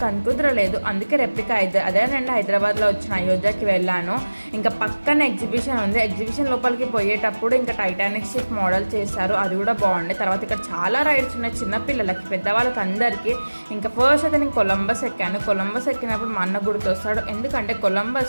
కుదరలేదు. అందుకే రెప్లికా అదే రెండు హైదరాబాద్లో వచ్చిన అయోధ్యకి వెళ్ళాను. ఇంకా పక్కన ఎగ్జిబిషన్ ఉంది. ఎగ్జిబిషన్ లోపలికి పోయేటప్పుడు ఇంకా టైటానిక్ షిప్ మోడల్ చేశారు, అది కూడా బాగుంది. తర్వాత ఇక్కడ చాలా రైడ్స్ ఉన్నాయి, చిన్నపిల్లలకి పెద్దవాళ్ళకి అందరికీ. ఇంకా ఫస్ట్ అయితే నేను కొలంబస్ ఎక్కాను. కొలంబస్ ఎక్కినప్పుడు మా అన్న గుర్తొస్తాడు, ఎందుకంటే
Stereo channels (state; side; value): inverted; both; correlation -1.00